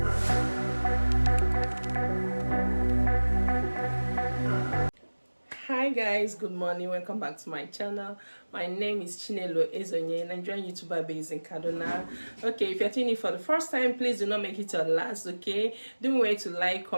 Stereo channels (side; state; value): both; inverted; correlation -1.00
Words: Hi guys, good morning, welcome back to my channel. My name is Chinelo Ezeonye, Nigerian YouTuber based in Kaduna. Okay, if you're tuning in for the first time, please do not make it your last. Okay, don't wait to like,